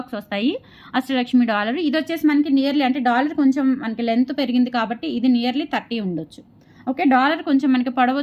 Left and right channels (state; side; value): identical; both; correlation 1.00